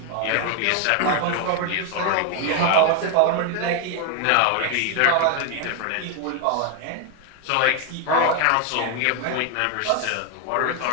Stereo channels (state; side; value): different; both; correlation 0.01